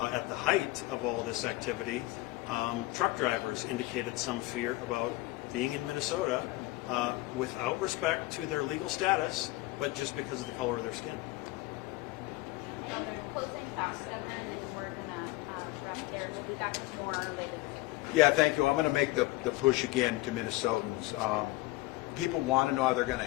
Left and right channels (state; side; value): quieter; right; 20.1 dB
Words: the height of all this activity, truck drivers indicated some fear about being in Minnesota without respect to their legal status, but just because of the color of their skin. Closing fast, Governor, and then we're going to wrap there. We'll be back with more later. Yeah, thank you. I'm going to make the push again to Minnesotans. People want to know how they're going to